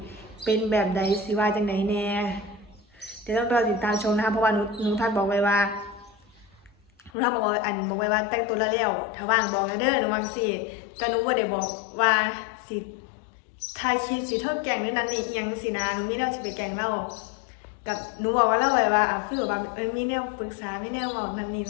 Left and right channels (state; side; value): drops out; right; at 7.1 s